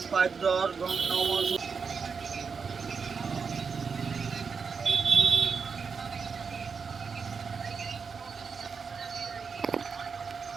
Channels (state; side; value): quieter; left; 5.5 dB